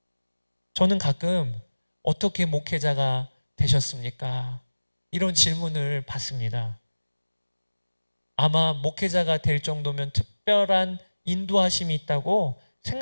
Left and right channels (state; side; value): inverted; both; correlation -1.00